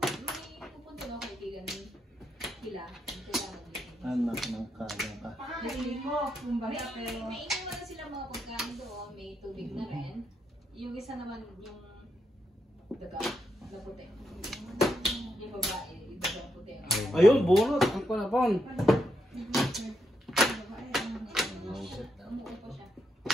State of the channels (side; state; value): both; normal; correlation 0.81